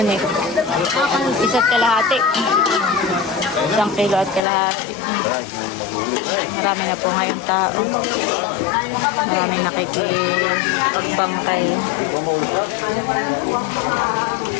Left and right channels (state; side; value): drops out; right; at 4.4 s